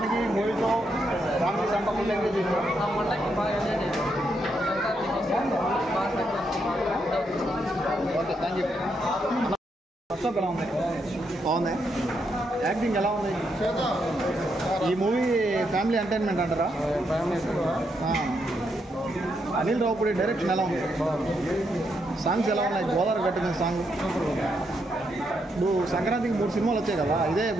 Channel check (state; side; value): normal; both; correlation 0.79